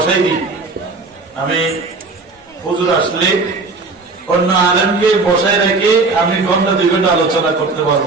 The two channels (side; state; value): left; quieter; 3.8 dB